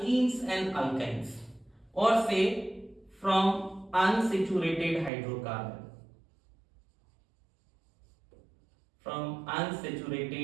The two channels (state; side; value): drops out; left; at 5.1 s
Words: and alkynes, or say from unsaturated hydrocarbon, from